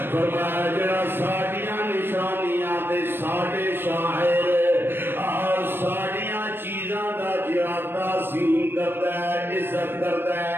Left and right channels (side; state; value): left; late; 0.10 ms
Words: فرمایا جڑا ساڈیاں نشانیاں تے ساڈے شاعر اور ساڈیاں چیزاں دا جڑا تعظیم کرتا ہے عزت کرتا ہے